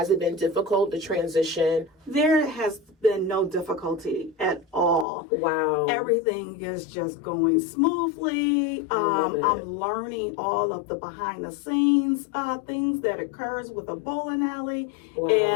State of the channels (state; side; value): drops out; right; at 5.1 s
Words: it been difficult to transition? There has been no difficulty at all. Wow. Everything is just going smoothly. I'm learning all of the behind the scenes things that occurs with a bowling alley. Wow.